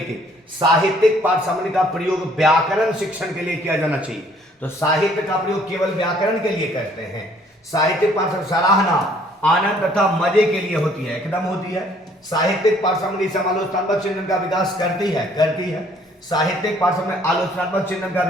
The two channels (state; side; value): normal; both; correlation 0.60